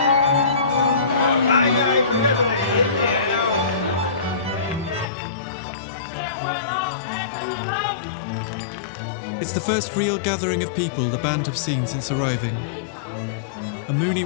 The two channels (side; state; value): right; drops out; at 5.1 s